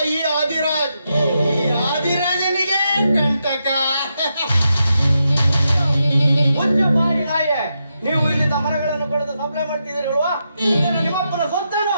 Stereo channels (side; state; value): both; inverted; correlation -0.84